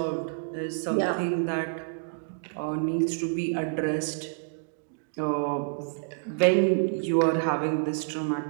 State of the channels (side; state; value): left; silent; digital silence